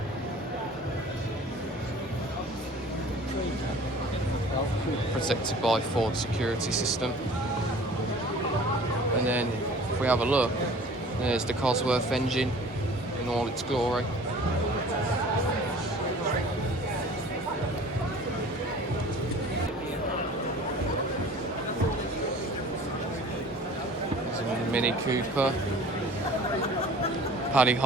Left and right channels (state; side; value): normal; both; correlation 0.46